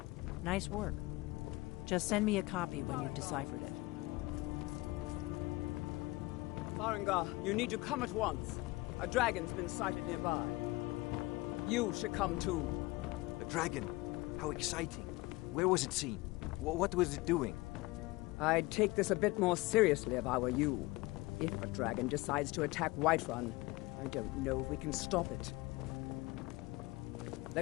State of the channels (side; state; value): right; quieter; 21.5 dB